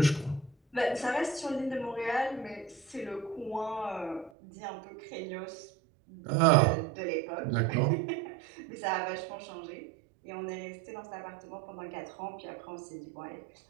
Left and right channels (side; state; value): left; drops out; at 4.3 s